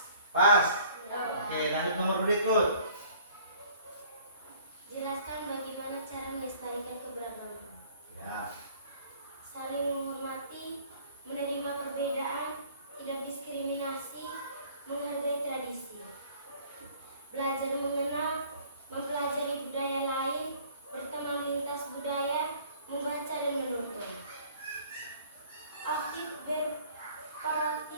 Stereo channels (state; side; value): inverted; both; correlation -0.54